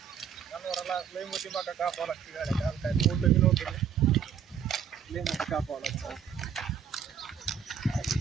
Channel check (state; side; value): quieter; left; 7.8 dB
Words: जनावराला लई मोठी मका कापावं लागते गाड्या काल काय मोठं बी नव्हतं ते. लई मोठी कापावं लागतं